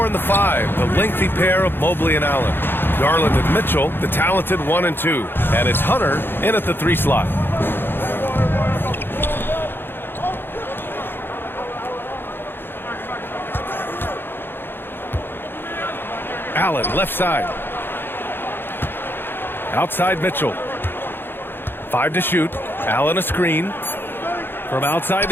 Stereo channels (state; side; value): late; right; 0.10 ms